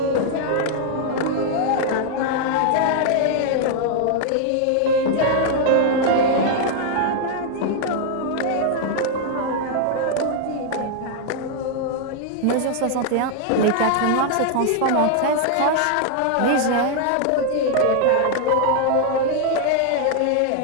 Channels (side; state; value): both; different; correlation 0.00